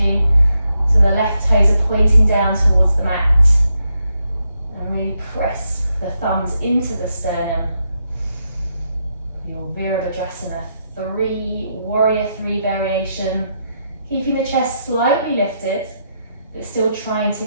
So the left toes are pointing down towards the mat. And really press the thumbs into the sternum. Your Virabhadrasana 3, warrior 3 variation. Keeping the chest slightly lifted, but still trying to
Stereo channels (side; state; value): both; inverted; correlation -0.82